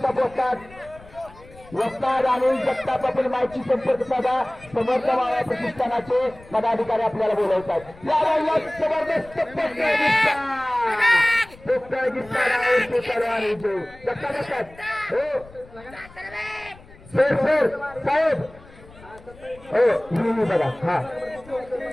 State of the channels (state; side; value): noise; left; rumble, 22 dB below the sound